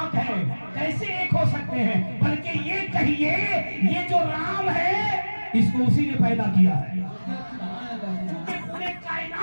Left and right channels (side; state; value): both; inverted; correlation -1.00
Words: ہے۔ کیسے ایک ہو سکتے ہیں؟ بلکہ یہ کہیے یہ جو رام ہے اس کو اسی نے پیدا کیا ہے، کیونکہ پورے